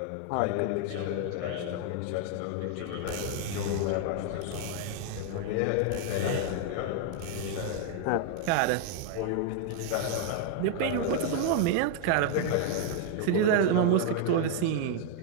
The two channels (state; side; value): different; both; correlation 0.00